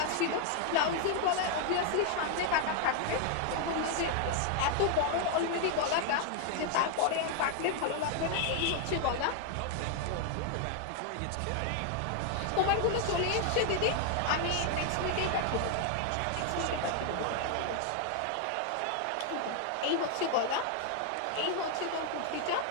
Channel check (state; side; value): different; both; correlation 0.00